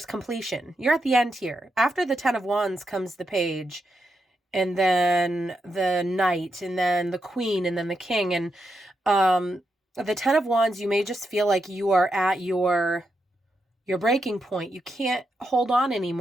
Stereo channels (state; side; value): normal; both; correlation 0.85